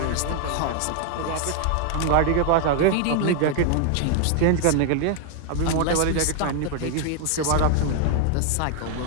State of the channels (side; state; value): both; different; correlation 0.00